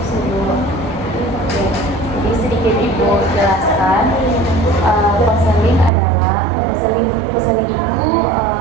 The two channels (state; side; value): drops out; left; at 5.9 s